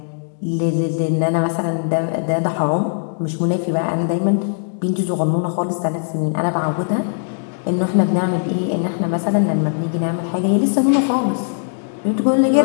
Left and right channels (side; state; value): right; silent; digital silence